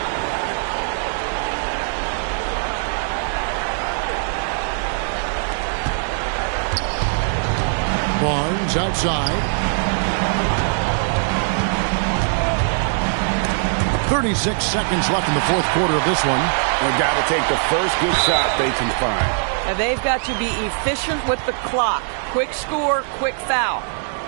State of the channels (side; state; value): left; silent; digital silence